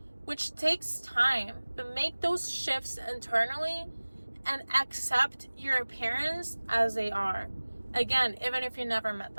which takes time, but make those shifts internally and accept your parents as they are. Again, even if you never met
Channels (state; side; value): inverted; both; correlation -1.00